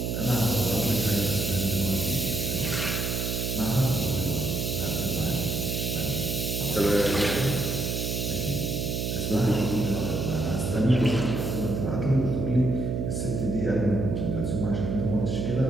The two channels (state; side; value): noise; right; hum, 1 dB below the sound